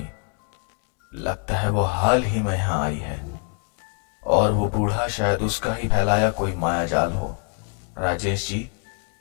लगता है वो हाल ही में यहां आई है और वो बूढ़ा शायद उसका ही फैलाया कोई मायाजाल हो। राजेश जी,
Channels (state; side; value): quieter; right; 37.1 dB